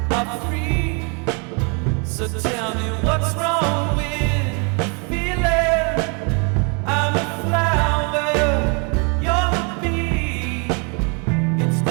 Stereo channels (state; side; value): quieter; left; 35.2 dB